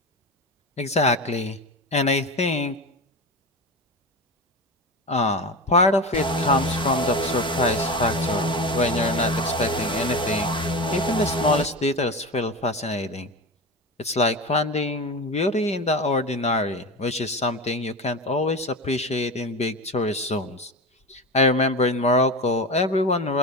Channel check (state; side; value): normal; both; correlation 0.23